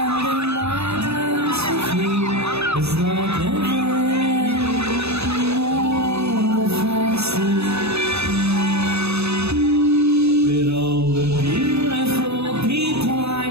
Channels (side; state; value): left; late; 0.79 ms